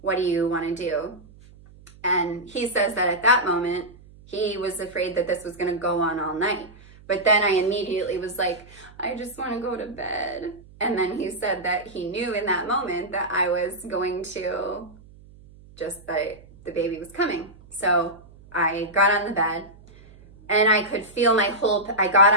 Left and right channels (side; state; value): right; noise; hum, 23 dB below the sound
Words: what do you want to do? And he says that at that moment, he was afraid that this was going to go on all night. But then I immediately was like, I just want to go to bed. And then he said that he knew in that moment that I was going to that the baby was coming. So I got on the bed, and I could feel I got